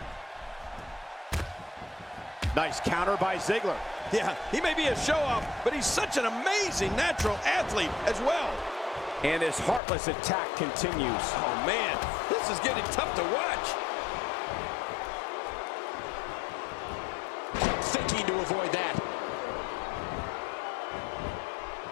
Nice counter by Ziggler. Yeah, he may be a show-off, but he's such an amazing natural athlete as well. And his heartless attack continues. Oh, man, this is getting tough to watch. Thinking to avoid that.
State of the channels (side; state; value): right; drops out; at 9.8 s